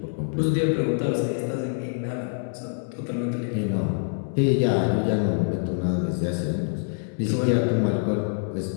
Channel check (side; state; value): right; silent; 61 dB below the other